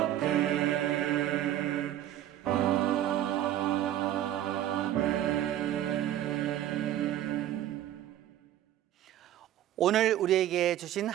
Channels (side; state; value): left; quieter; 12.4 dB